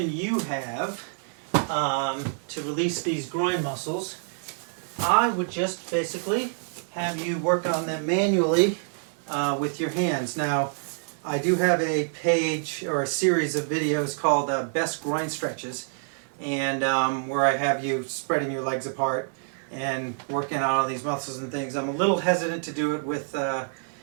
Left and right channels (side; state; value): left; silent; digital silence